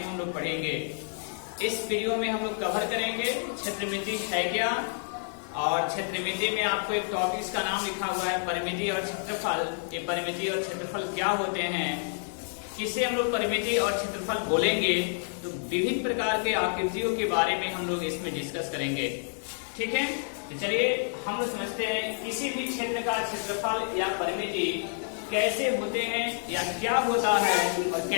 लोग पढ़ेंगे। इस वीडियो में हम लोग कवर करेंगे क्षेत्रमिति है क्या, और क्षेत्रमिति में आपको एक टॉपिक का नाम लिखा हुआ है परिमिति और क्षेत्रफल। ये परिमिति और क्षेत्रफल क्या होते हैं, किसे हम लोग परिमिति और क्षेत्रफल बोलेंगे, तो विभिन्न प्रकार के आकृतियों के बारे में हम लोग इसमें डिस्कस करेंगे। ठीक है, तो चलिए हम लोग समझते हैं किसी भी क्षेत्र का क्षेत्रफल या परिमिति कैसे होते हैं या क्या होता है, और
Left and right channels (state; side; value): silent; right; digital silence